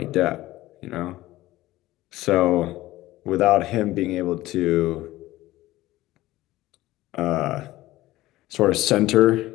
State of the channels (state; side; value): quieter; right; 16.9 dB